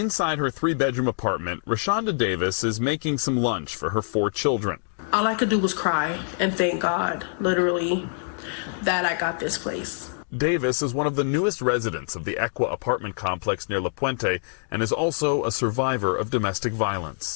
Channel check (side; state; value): right; silent; digital silence